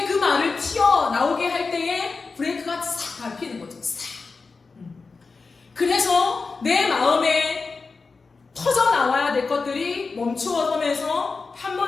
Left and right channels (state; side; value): quieter; right; 4.4 dB